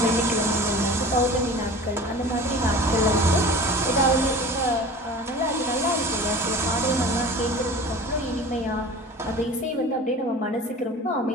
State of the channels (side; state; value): both; normal; correlation 0.39